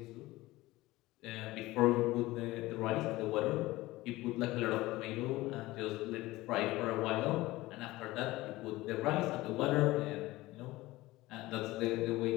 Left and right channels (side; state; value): right; quieter; 18.8 dB